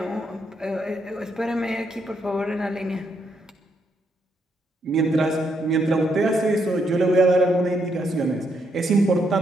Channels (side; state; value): both; normal; correlation 0.77